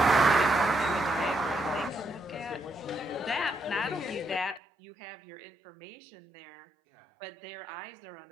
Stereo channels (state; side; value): drops out; left; at 4.6 s